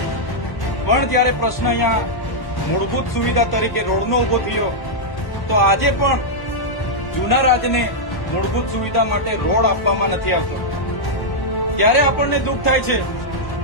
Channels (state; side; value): late; right; 1.1 ms